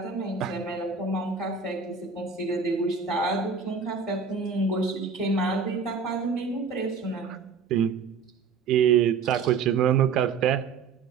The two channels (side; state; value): left; quieter; 5.6 dB